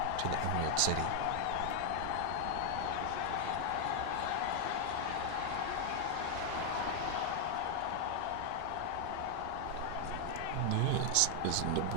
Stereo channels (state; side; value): different; both; correlation 0.00